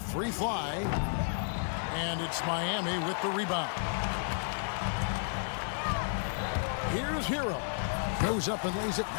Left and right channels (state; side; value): silent; right; 56 dB below the other